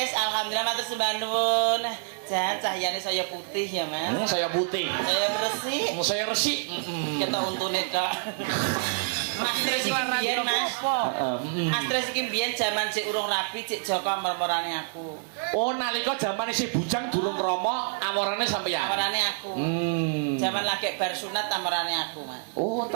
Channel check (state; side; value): silent; left; digital silence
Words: alhamdulillah matur sembah nuwun. Jan cahyane saya putih ya, Mas. Saya putih. Saya resik. Saya resik. Kita untune Kak. Mas Tris biyen Mas. Mas Tris iki biyen jaman cek urung rapi, cek Joko mermorane aku. Oh, nalika jaman isih bujang durung romo, amorane sampeyan. Amorane aku. Jaman lagi bar sunat amorane aku, Mas. Oh,